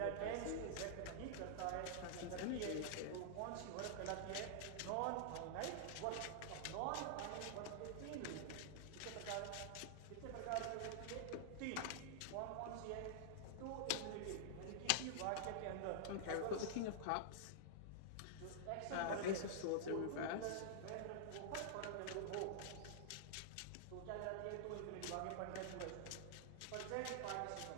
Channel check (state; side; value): different; both; correlation -0.01